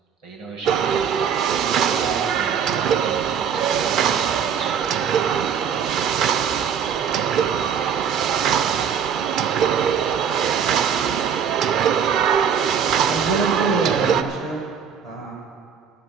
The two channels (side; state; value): left; quieter; 7.4 dB